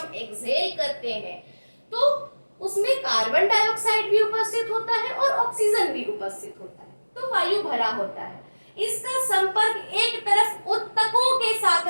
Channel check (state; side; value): inverted; both; correlation -1.00